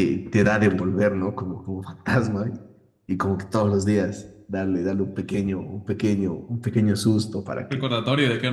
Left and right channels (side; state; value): both; identical; correlation 1.00